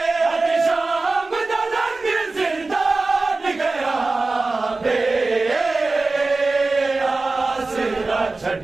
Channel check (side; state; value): left; quieter; 3.5 dB